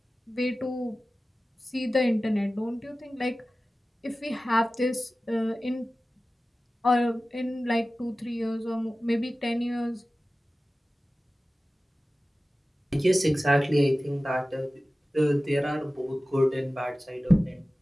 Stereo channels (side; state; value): both; normal; correlation 0.96